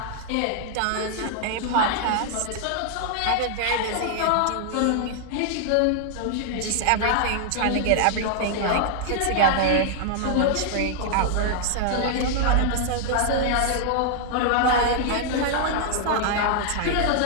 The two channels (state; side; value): different; both; correlation -0.01